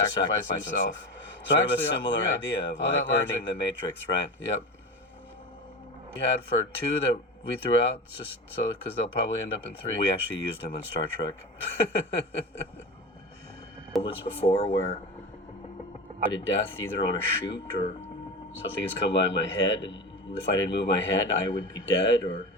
himself. So sort of a similar idea of like earning the Matrix, right? Yep. We had for 2 that we threw out, just so because they'll probably end up in 3. We actually used them in Star Trek. Moments before where I did death either on a shoot or something has come by my head, and if I didn't move my head, I would be dead. Or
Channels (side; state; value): both; normal; correlation 0.27